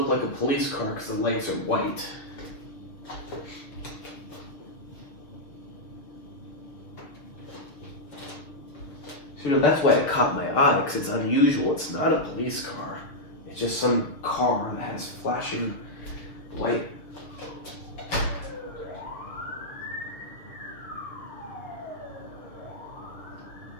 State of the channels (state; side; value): late; right; 6.5 ms